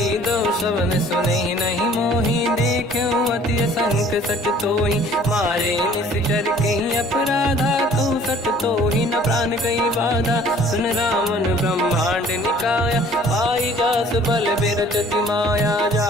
दो शवन सुने नहीं मोही, देखूं अति संक सट तोही। मारे निश्चर कहीं अपराधा, तू सट तोही न प्राण कहीं बाधा। सुन रावण ब्रह्मांड निकाया, पाई जास बल बिरचति माया।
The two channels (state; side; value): normal; both; correlation 0.54